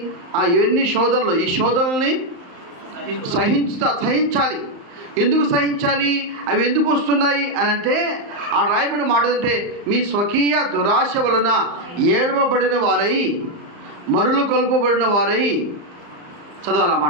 ఇవన్నీ శోధనలు, ఈ శోధనల్ని సహించాలి. ఎందుకు సహించాలి? అవి ఎందుకు వస్తున్నాయి అని అంటే, ఆ రాయబడిన మాట అంటే, మీ స్వకీయ దురాశ వలన ఏడవబడిన వారై, మరులు కొల్పబడిన వారై.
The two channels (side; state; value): left; late; 35 ms